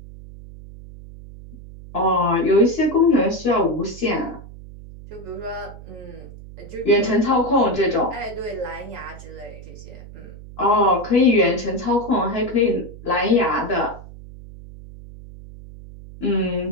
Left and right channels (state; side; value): noise; right; hum, 16 dB below the sound